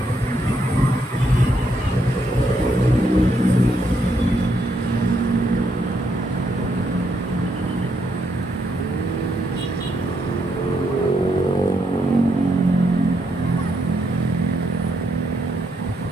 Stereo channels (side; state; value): both; normal; correlation 0.76